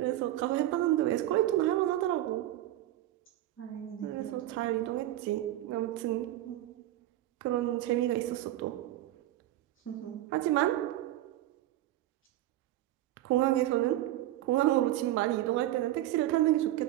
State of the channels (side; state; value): left; quieter; 14.5 dB